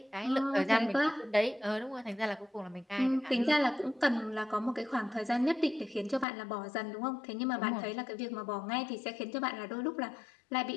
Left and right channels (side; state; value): right; drops out; at 6.2 s